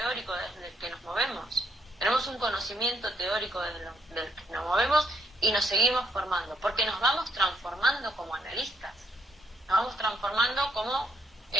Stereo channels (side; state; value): both; normal; correlation 0.73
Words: desde el que nos movemos. Tenemos un conocimiento teórico desde el que nos movemos y nos seguimos formando, porque nos vamos transformando como analistas. Nos vamos transformando como